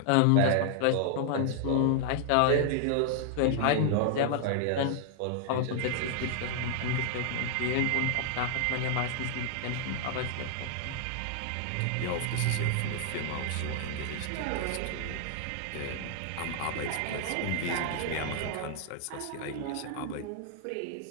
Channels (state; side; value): different; both; correlation 0.00